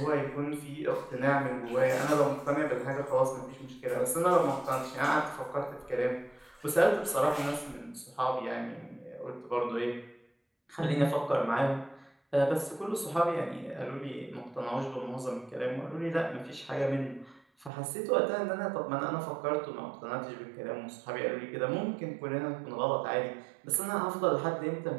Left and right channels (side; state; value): left; drops out; at 17.7 s